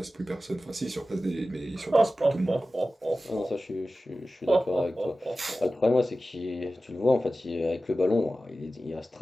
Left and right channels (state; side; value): normal; both; correlation 0.95